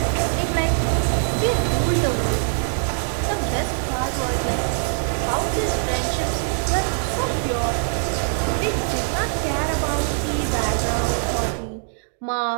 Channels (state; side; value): silent; left; digital silence